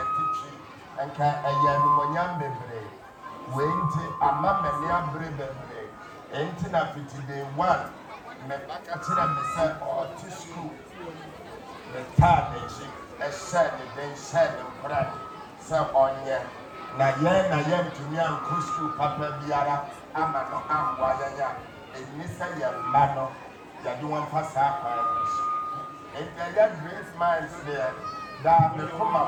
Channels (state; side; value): identical; both; correlation 1.00